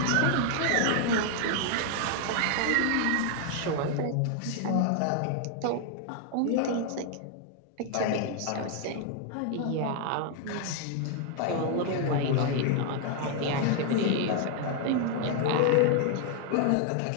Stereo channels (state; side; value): different; both; correlation 0.00